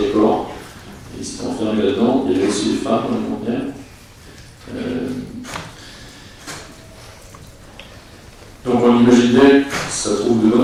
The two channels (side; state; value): both; identical; correlation 1.00